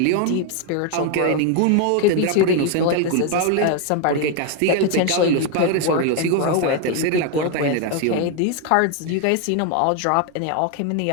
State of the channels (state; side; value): different; both; correlation 0.01